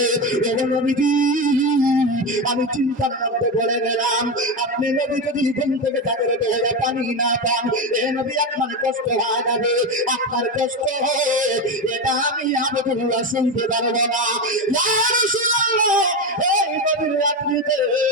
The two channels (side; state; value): both; normal; correlation 0.16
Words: নবীজি আমি চিন্তার মধ্যে পড়ে গেলাম, আপনি নবী যদি ঘুম থেকে জাগরে হয়ে পানি না পান, এ নবী আপনার কষ্ট হয়ে যাবে, আপনার কষ্ট হবে, এটা আমি আব্দুল্লাহ শুনতে পারবো না। ইয়া রাসূলুল্লাহ, এই গভীর রাত্রিতে